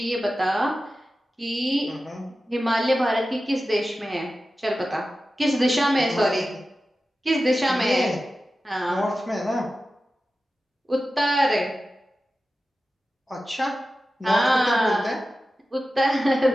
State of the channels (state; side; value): normal; both; correlation 0.94